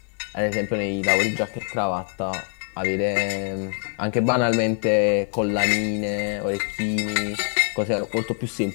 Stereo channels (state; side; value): quieter; right; 39.0 dB